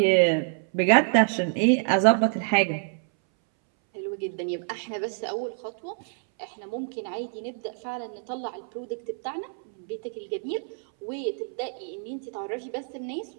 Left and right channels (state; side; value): silent; left; 60 dB below the other